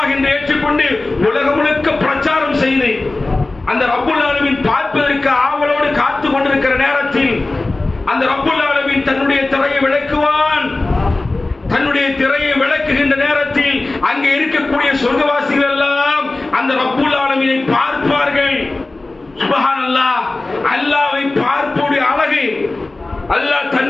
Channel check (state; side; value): quieter; right; 3.1 dB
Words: என்று ஏற்றுக்கொண்டு உலகம் முழுக்க பிரச்சாரம் செய்து அந்த ரப்புல் ஆலமீன் பார்ப்பதற்கு ஆவலோடு காத்து கொண்டிருக்கிற நேரத்தில் அந்த ரப்புல் ஆலமீன் தன்னுடைய திரையை விளக்குவான். தன்னுடைய திரையை விளக்குகின்ற நேரத்தில் அங்கே இருக்கக்கூடிய சொர்க்கவாசிகள் எல்லாம் அந்த ரப்புல் ஆலமீனை பார்ப்பார்கள். சுப்ஹானல்லாஹ், அல்லாஹ்வை பார்ப்போடைய அழகு. அல்லாஹ்